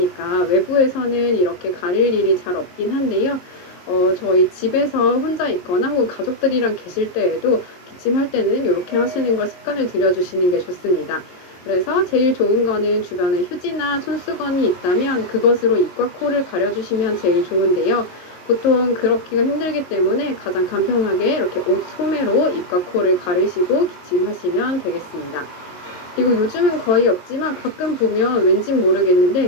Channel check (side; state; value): right; late; 22 ms